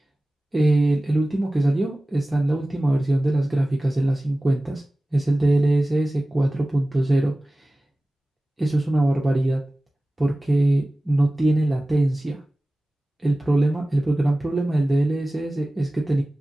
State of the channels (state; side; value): normal; both; correlation 0.97